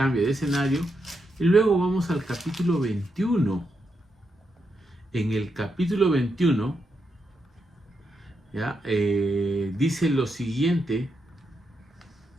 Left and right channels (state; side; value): normal; both; correlation 0.83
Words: de escenario. Y luego vamos al capítulo 21. En el capítulo 21, ¿ya? Dice lo siguiente